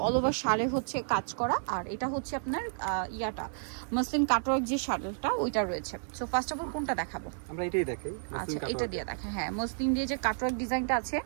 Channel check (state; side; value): silent; left; digital silence